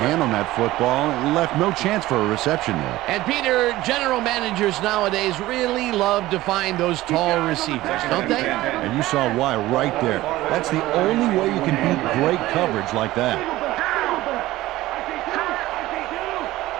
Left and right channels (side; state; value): left; quieter; 16.9 dB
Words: hand on that football and left no chance for a reception there. And Peter, general managers nowadays really love to find those tall receivers, don't they? And you saw why right there. That's the only way you can beat great coverage like that.